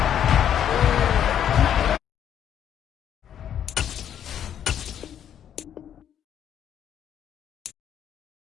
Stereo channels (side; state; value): right; quieter; 9.6 dB